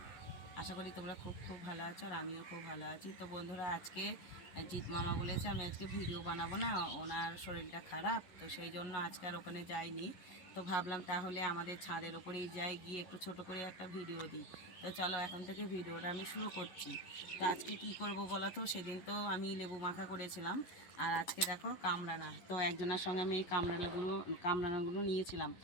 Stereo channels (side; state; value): right; late; 11 ms